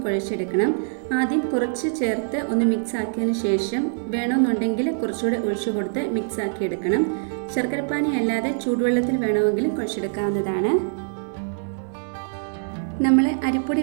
കുഴച്ചെടുക്കണം. ആദ്യം കുറച്ച് ചേർത്ത് ഒന്ന് മിക്സ് ആക്കിയതിന് ശേഷം വേണമെന്നുണ്ടെങ്കിൽ കുറച്ചുകൂടെ ഒഴിച്ചു കൊടുത്ത് മിക്സ് ആക്കി എടുക്കണം. ശർക്കര പാനി അല്ലാതെ ചൂടുവെള്ളത്തിൽ വേണമെങ്കിലും കുഴച്ചെടുക്കാവുന്നതാണ്. നമ്മൾ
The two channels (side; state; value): left; silent; 63 dB below the other